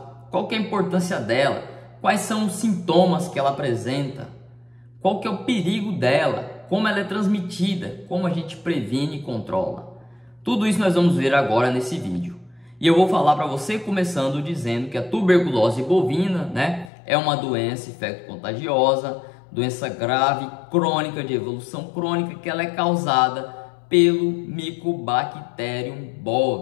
Qual que é a importância dela? Quais são os sintomas que ela apresenta? Qual que é o perigo dela? Como ela é transmitida? Como a gente previne e controla? Tudo isso nós vamos ver agora nesse vídeo. E eu vou falar para você começando dizendo que a tuberculose bovina, é uma doença infecto-contagiosa, doença grave, crônica, de evolução crônica, que ela é causada pelo Mycobacterium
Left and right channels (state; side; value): drops out; right; at 16.9 s